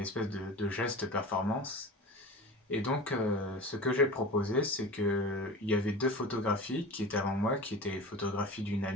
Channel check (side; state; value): both; normal; correlation 0.33